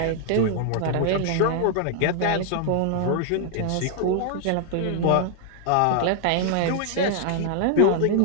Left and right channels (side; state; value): both; different; correlation 0.00